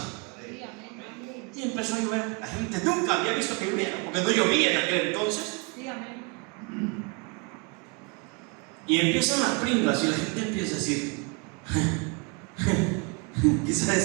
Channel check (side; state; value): left; quieter; 32.0 dB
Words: Y empezó a llover. La gente nunca había visto que lloviera, porque no llovía en aquel entonces. Y empiezan las pringas y la gente empieza a decir: quizás